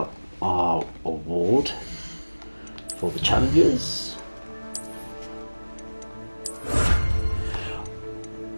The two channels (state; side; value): inverted; both; correlation -1.00